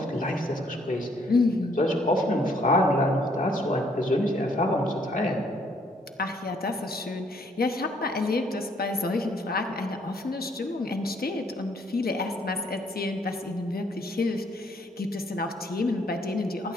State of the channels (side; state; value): both; normal; correlation 0.66